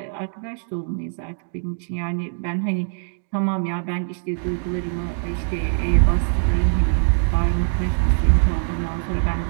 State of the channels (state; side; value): silent; left; digital silence